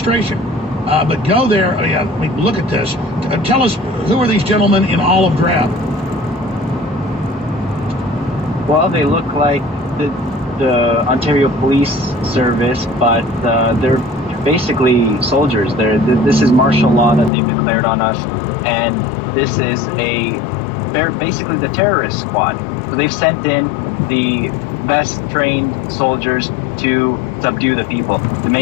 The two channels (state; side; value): drops out; right; at 17.3 s